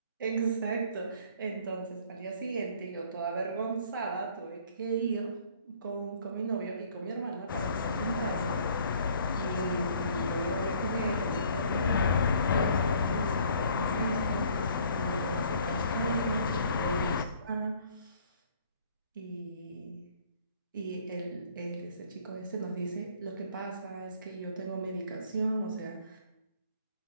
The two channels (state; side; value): inverted; both; correlation -0.57